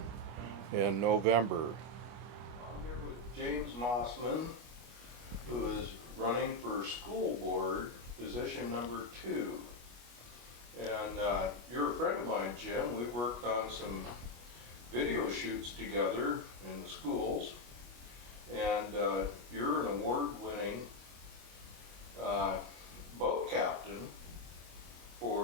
in November. I'm here with James Mossman, who is running for school board, position number 2. And you're a friend of mine, Jim. We've worked on some video shoots together in the schools. And you're an award-winning boat captain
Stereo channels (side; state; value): left; late; 25 ms